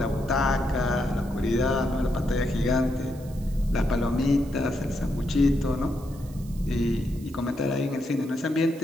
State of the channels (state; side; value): noise; right; hiss, 23 dB below the sound